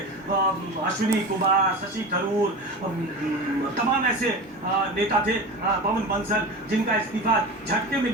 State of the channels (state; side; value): normal; both; correlation 0.29